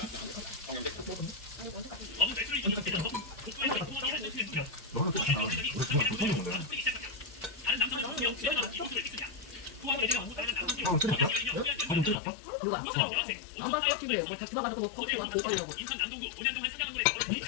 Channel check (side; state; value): right; drops out; at 12.2 s